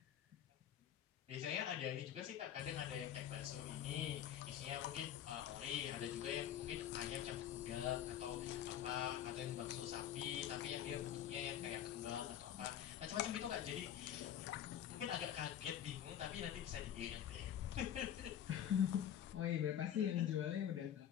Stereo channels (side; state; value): right; quieter; 10.4 dB